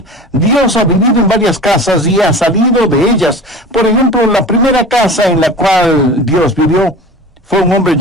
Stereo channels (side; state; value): both; normal; correlation 0.37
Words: Dios ha vivido en varias casas y ha salido de ellas. Por ejemplo, la primera casa en la cual Dios vivió fue un hombre